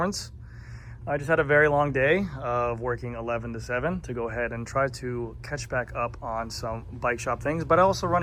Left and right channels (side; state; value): both; identical; correlation 1.00